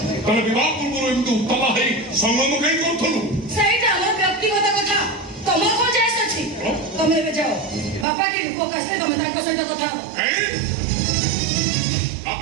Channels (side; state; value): left; drops out; at 8.1 s